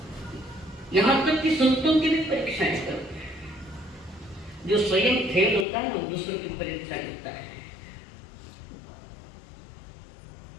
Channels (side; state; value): right; drops out; at 5.7 s